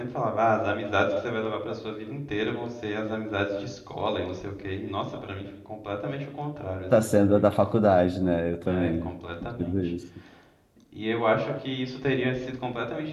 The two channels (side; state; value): both; identical; correlation 1.00